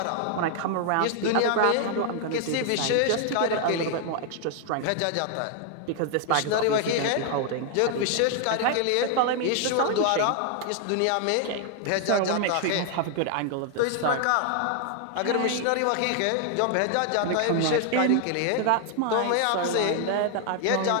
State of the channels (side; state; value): both; different; correlation 0.00